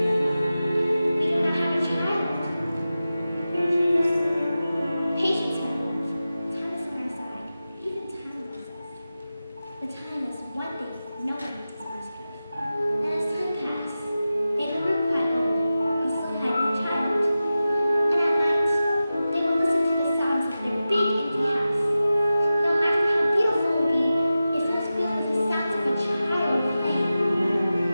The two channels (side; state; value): both; inverted; correlation -0.94